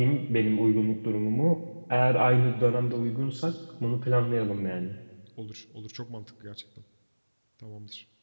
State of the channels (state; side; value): inverted; both; correlation -1.00